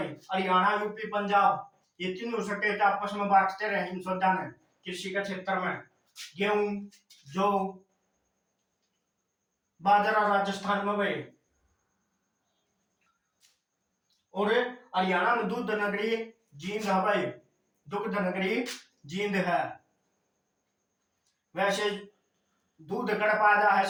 हरियाणा, यूपी, पंजाब, ये तीनों स्टेट आपस में बांटते रहे अनुसंधान है कृषि के क्षेत्र में। गेहूं, जो, बाजरा राजस्थान में भाई, और हरियाणा में दूध नगरी जींद है भाई, दुग्ध नगरी जींद है। वैसे दूध कड़ पाया है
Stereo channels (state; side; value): identical; both; correlation 1.00